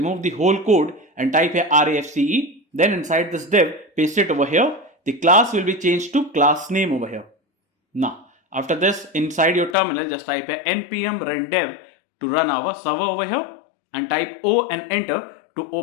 the whole code and type here RAFCE. Then inside this div paste it over here. The class will be changed to class name over here. Now after this inside your terminal just type here npm run dev to run our server over here and type O and enter to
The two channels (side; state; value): right; drops out; at 9.8 s